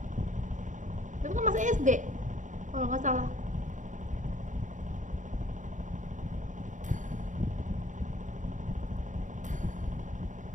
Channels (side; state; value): left; late; 0.36 ms